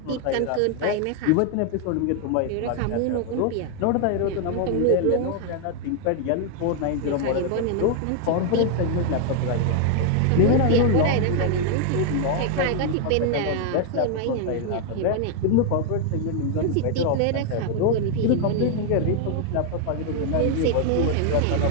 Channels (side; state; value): both; different; correlation 0.00